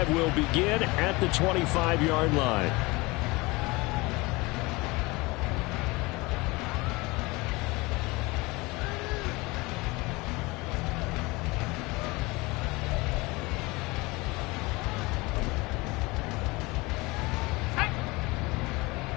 will begin at the 25-yard line.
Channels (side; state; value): right; quieter; 23.6 dB